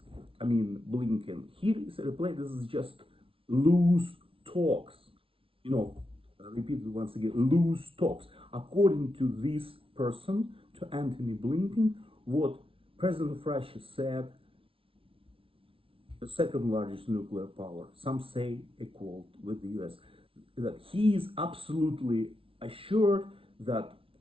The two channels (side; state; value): left; late; 0.26 ms